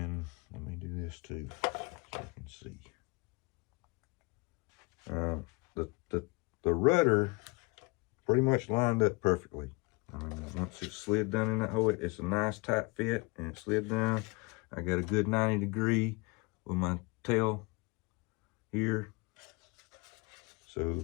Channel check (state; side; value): quieter; right; 27.5 dB